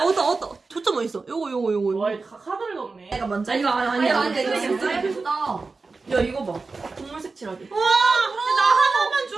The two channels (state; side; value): quieter; left; 4.0 dB